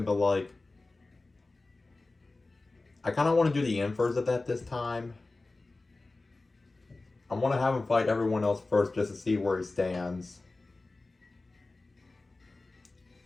But like, I kind of want to do the inverse of that this time. I want to have him fight everyone else first just to see where he stands.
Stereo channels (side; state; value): right; quieter; 3.3 dB